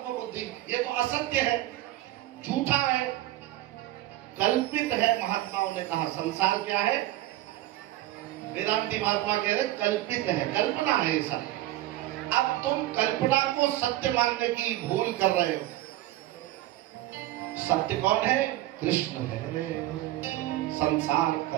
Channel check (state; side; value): quieter; left; 15.5 dB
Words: बुद्धि, ये तो असत्य है, झूठा है, कल्पित है। महात्माओं ने कहा संसार क्या है? वेदांती महात्मा कह रहे कल्पित है, कल्पना है ऐसा। अब तुम कल्पना को सत्य मानने की भूल कर रहे हो। सत्य कौन है? कृष्ण है। संसार